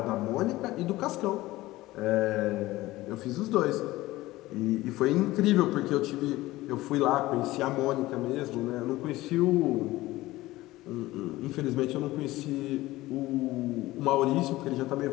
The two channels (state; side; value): quieter; right; 17.8 dB